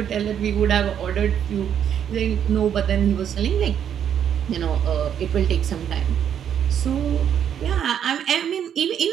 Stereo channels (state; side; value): quieter; left; 9.0 dB